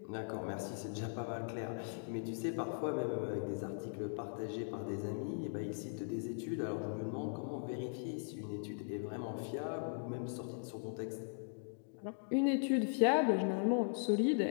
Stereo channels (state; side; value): silent; right; digital silence